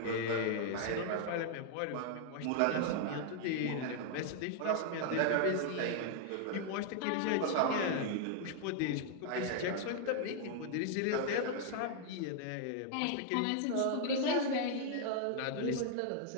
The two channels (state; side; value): different; both; correlation 0.00